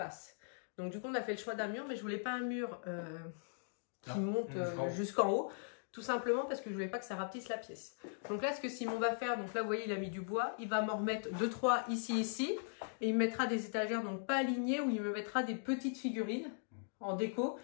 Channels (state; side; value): silent; right; digital silence